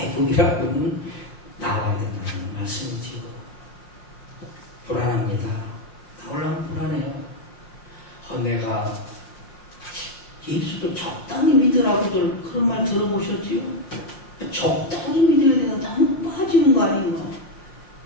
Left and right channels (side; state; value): right; late; 5.6 ms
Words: 하는 나와야 된다는 말씀이지요. 불안합니다. 나오려면 불안해요. 내가 예수를 적당히 믿으라고들 그런 말 들어보셨지요? 적당히 믿어야 되나? 너무 빠지는 거 아닌가?